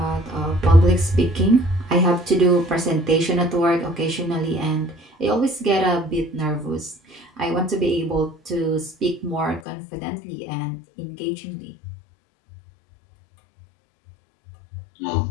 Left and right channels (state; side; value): drops out; right; at 9.6 s